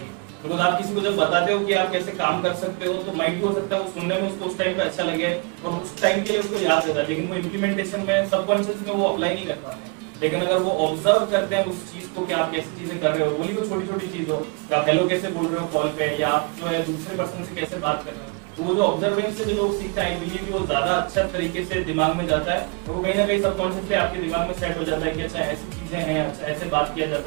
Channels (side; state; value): left; quieter; 32.4 dB